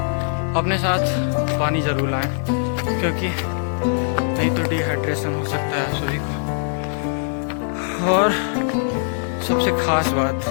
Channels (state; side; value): silent; right; digital silence